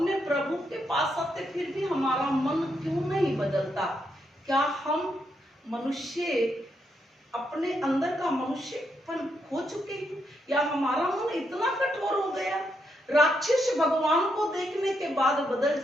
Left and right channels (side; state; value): both; normal; correlation 0.79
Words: प्रभु के पास आते, फिर भी हमारा मन क्यों नहीं बदलता? क्या हम मनुष्य अपने अंदर का मनुष्यपन खो चुके हैं, या हमारा मन इतना कठोर हो गया? राक्षस भगवान को देखने के बाद बदल